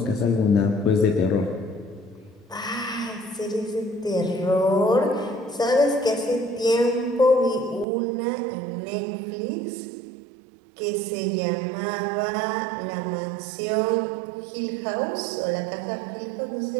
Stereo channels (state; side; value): drops out; left; at 7.9 s